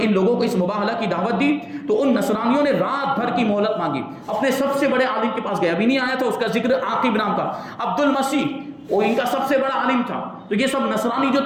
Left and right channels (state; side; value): identical; both; correlation 1.00